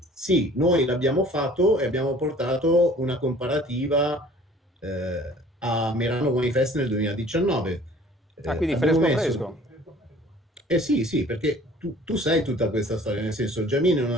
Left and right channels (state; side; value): normal; both; correlation 0.51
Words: Sì, noi l'abbiamo fatto e abbiamo portato una comparativa a Merano Wine Fest nel 2019. Ah, quindi Abbiamo fresco messo... fresco. Eh sì, sì, perché tu sai tutta questa storia, nel senso, Giamin è